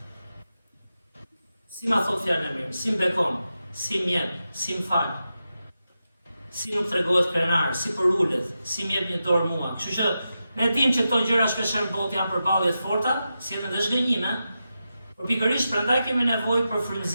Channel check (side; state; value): both; inverted; correlation -0.90